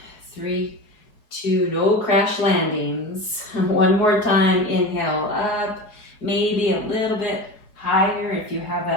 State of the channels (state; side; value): late; right; 4.7 ms